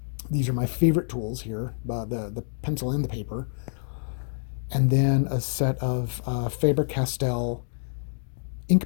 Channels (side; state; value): right; silent; digital silence